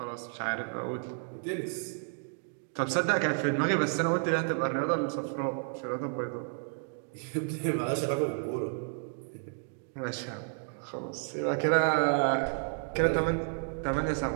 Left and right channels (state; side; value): silent; left; 57 dB below the other